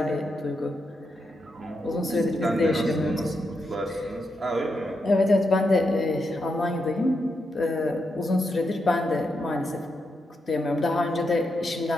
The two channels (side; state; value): both; normal; correlation 0.84